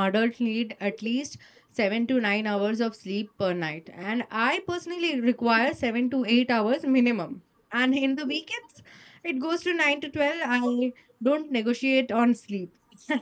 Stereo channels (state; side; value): identical; both; correlation 1.00